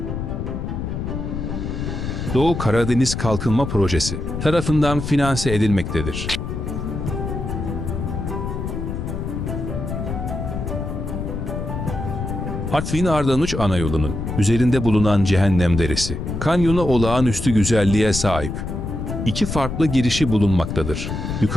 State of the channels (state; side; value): noise; left; rumble, 4 dB below the sound